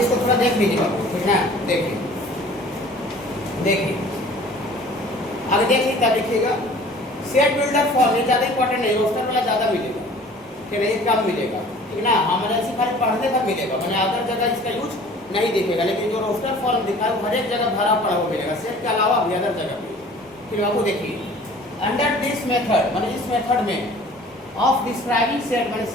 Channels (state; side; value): normal; both; correlation 0.48